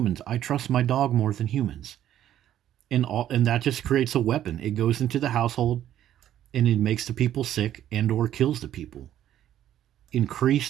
I trust my dog more than humans. And that just creates a weapon. It goes into the household and it makes the people sick and or kills the people.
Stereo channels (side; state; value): left; quieter; 11.6 dB